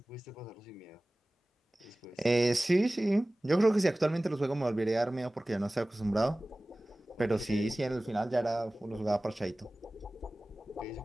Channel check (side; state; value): both; normal; correlation 0.98